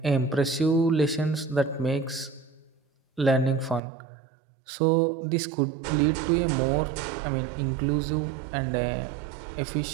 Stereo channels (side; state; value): left; drops out; at 3.8 s